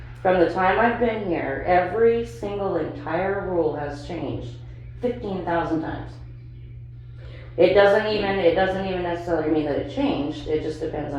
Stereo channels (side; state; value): both; identical; correlation 1.00